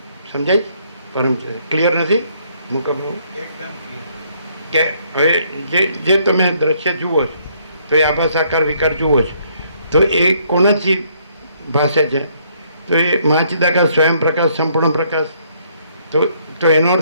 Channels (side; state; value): both; inverted; correlation -0.67